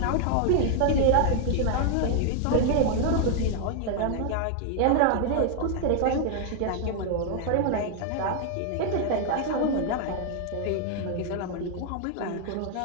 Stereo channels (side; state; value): both; different; correlation 0.00